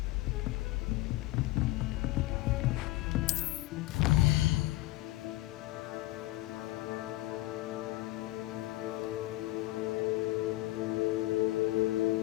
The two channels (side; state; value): right; quieter; 17.5 dB